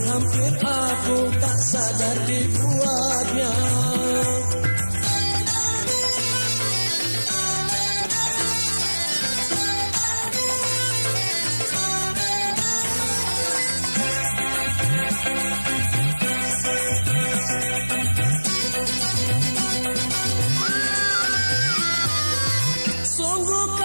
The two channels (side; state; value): both; inverted; correlation -1.00